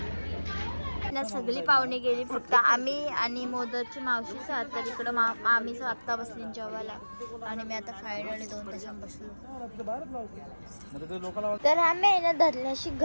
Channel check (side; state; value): both; inverted; correlation -1.00